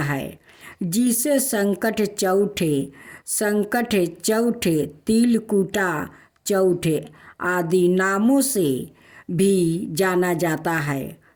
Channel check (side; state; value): both; identical; correlation 1.00